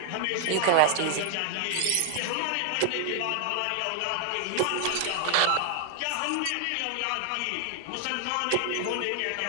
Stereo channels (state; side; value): different; both; correlation 0.00